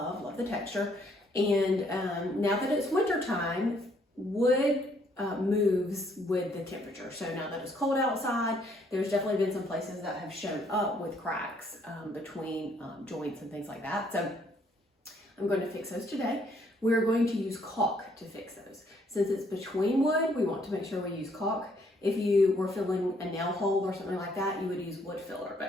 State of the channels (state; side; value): normal; both; correlation 0.67